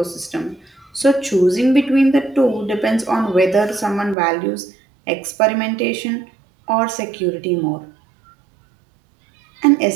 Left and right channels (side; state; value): left; drops out; at 4.2 s